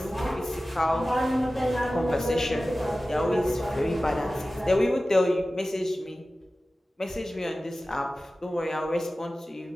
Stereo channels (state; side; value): normal; both; correlation 0.96